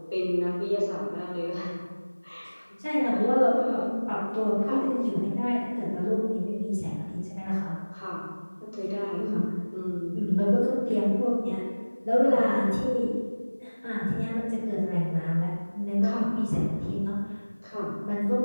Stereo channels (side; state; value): both; inverted; correlation -1.00